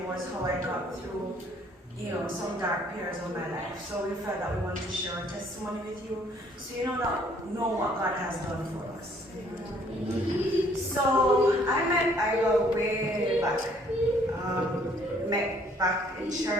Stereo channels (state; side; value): normal; both; correlation 0.61